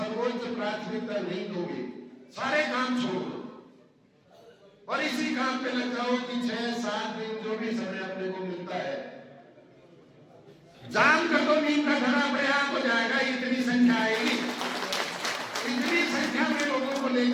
प्राथमिकता नहीं दोगे, सारे काम छोड़ दो और इसी काम पे लग जाओ कि 6-7 दिन जो भी समय अपने को मिलता है जाम कर दो, नीम का घड़ा अपने आप हो जाएगा। इतनी संख्या आएगी, इतनी संख्या में लोगों को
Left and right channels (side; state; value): both; identical; correlation 1.00